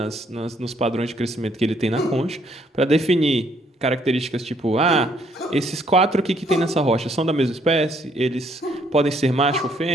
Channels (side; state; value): both; normal; correlation 0.68